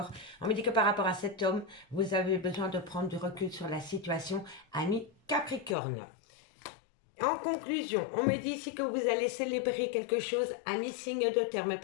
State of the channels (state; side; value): drops out; right; at 5.8 s